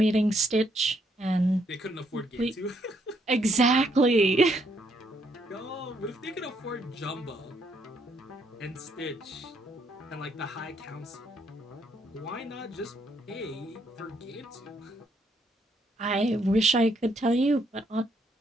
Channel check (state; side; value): normal; both; correlation 0.72